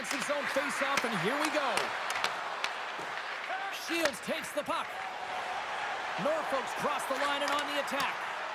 zone faceoff, and here we go. Shields takes the puck. Norfolk's crossed the line and on the attack.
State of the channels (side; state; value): both; identical; correlation 1.00